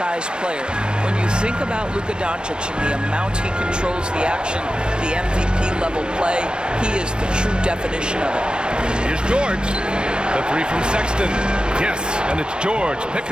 player. When you think about Luka Doncic and the amount he controls the action, the MVP level play, he is the true definition of it. Here's George. The 3 from Sexton. Yes, and it's George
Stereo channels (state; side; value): late; left; 0.053 ms